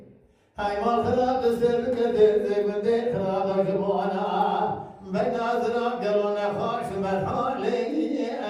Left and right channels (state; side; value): identical; both; correlation 1.00